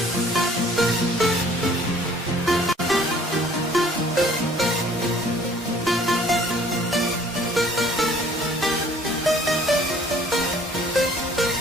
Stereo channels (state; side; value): normal; both; correlation 0.55